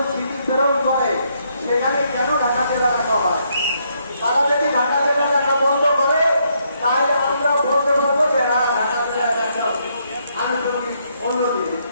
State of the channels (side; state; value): both; inverted; correlation -0.74